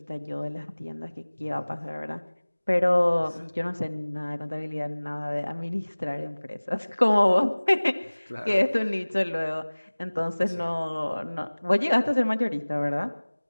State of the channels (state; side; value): inverted; both; correlation -1.00